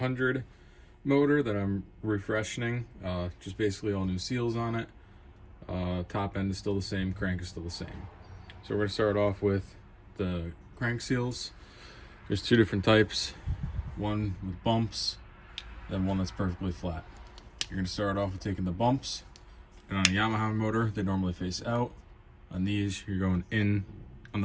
motor that I'm refreshening. Just basically all new seals on it. Top end is still the same, crank is still the same. So we're going to start off with the crank seals. There's two different types. One with bumps, then one that's perfectly flat. You're going to start off with taking the bumps, and on a Yamaha motor, they normally face out. On these, you're going in on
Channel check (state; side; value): identical; both; correlation 1.00